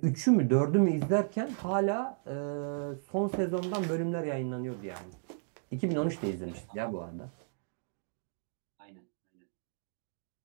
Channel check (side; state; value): left; silent; digital silence